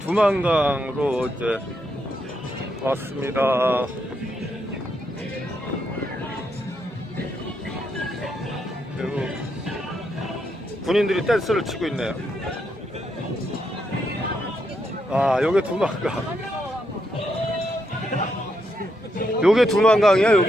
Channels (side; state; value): both; normal; correlation 0.80